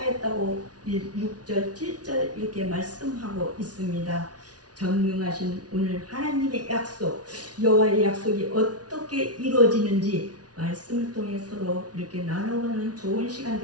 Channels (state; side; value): late; left; 0.69 ms